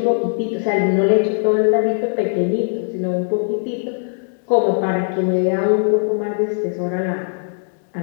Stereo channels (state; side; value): silent; right; 58 dB below the other